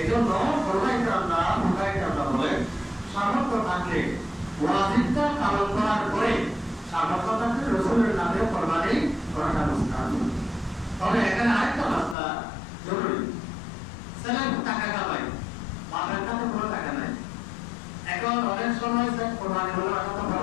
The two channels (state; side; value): drops out; right; at 12.2 s